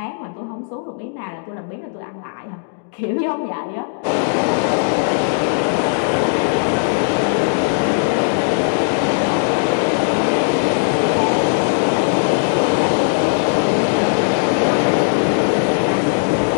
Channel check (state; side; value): silent; right; digital silence